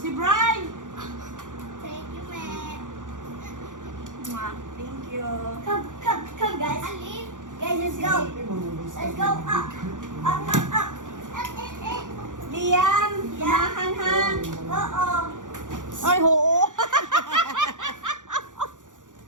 Brian. Thank you, man. Thank you. Come, guys. Alin? Guys, let's go. Let's go up. Up. Liam, Mahanhan. Oo. Ay, oo.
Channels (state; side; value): late; left; 0.87 ms